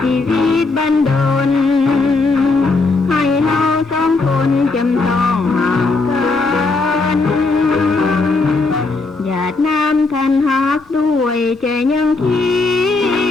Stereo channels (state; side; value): quieter; right; 3.7 dB